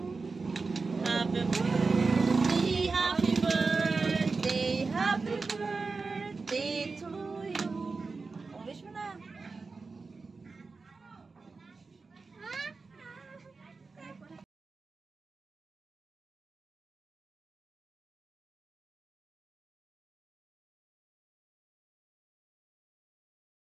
Happy birthday, happy birthday, happy birthday to you. Oh, wish mo na.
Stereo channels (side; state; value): left; quieter; 4.2 dB